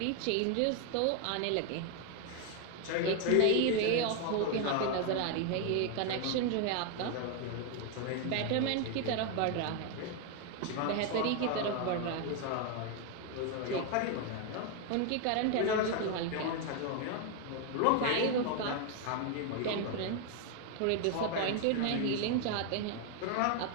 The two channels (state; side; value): different; both; correlation 0.01